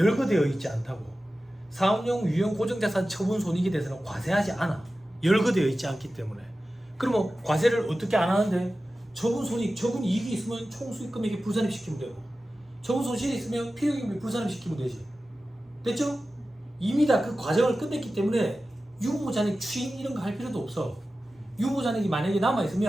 있지 않다고. 사업용 유형 고정자산 처분손익에 대해서는 과세하지 않아. 열거되어 있지 않기 때문에. 그러면 과세를 어떻게 안 하는데? 처분손익, 처분이익이 있으면 총수익금액에 불산입시키면 되고, 처분소실이 있으면 필요금액 불산입시키면 되지. 됐죠? 이미 다 그 과정을 끝냈기 때문에 유보잔액 추인 이런 거 할 필요도 없어. 유보잔액이 만약에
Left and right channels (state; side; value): normal; both; correlation 0.94